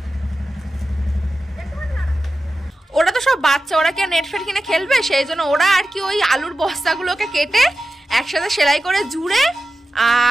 ওরা তো সব বাচ্চা, ওরা কি নেট ফেট কিনে খেলবে, সেই জন্য ওরা আর কি ওই আলুর বস্তাগুলোকে কেটে একসাথে সেলাই করে জুড়ে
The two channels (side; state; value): both; normal; correlation 0.93